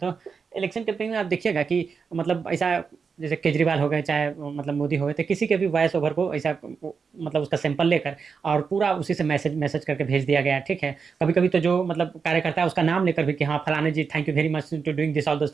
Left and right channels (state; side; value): quieter; left; 5.6 dB